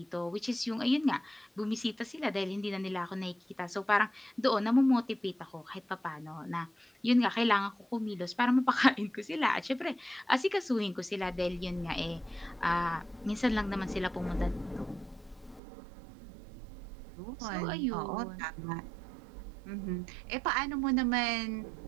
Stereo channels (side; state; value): left; drops out; at 15.6 s